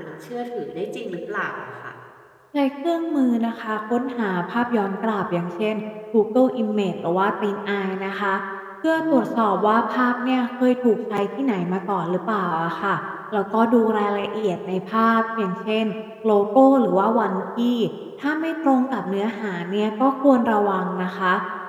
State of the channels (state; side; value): identical; both; correlation 1.00